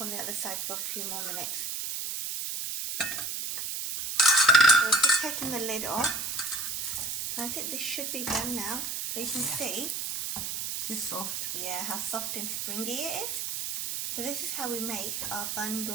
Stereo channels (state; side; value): noise; right; hiss, 3 dB below the sound